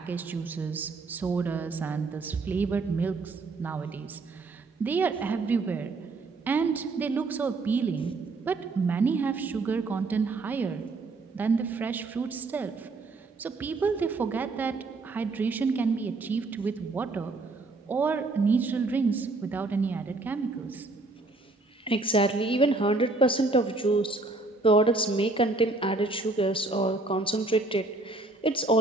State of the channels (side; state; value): left; quieter; 3.4 dB